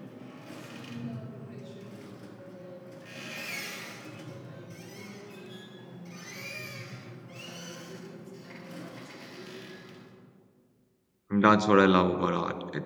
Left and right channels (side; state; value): both; identical; correlation 1.00